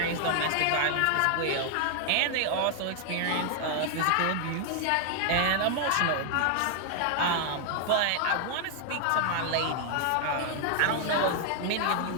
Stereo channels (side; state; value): both; different; correlation 0.00